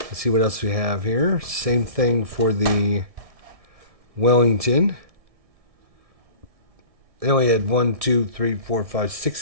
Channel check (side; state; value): left; late; 1.6 ms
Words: Let's see what else we have here. Same thing for the Wellington. They only had 1, 2, 3, 4, 5, 6